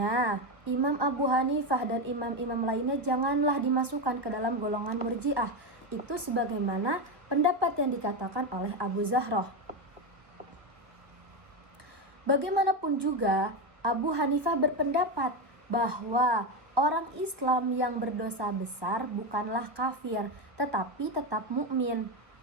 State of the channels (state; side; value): late; left; 1.3 ms